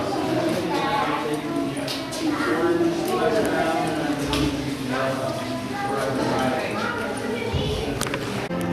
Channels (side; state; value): both; identical; correlation 1.00